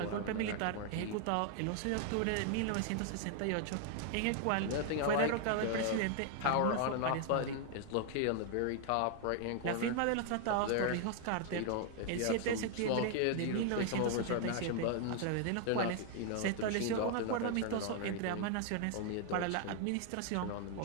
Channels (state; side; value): different; both; correlation 0.00